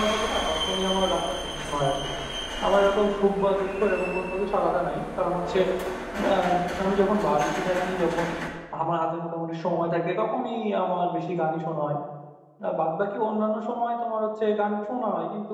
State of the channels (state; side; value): identical; both; correlation 1.00